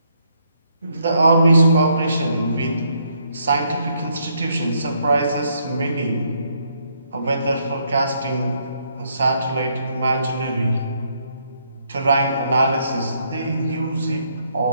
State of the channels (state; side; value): inverted; both; correlation -0.72